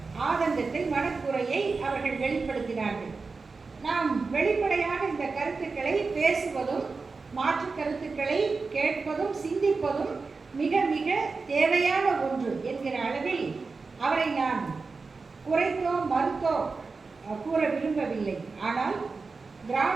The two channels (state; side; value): quieter; left; 4.3 dB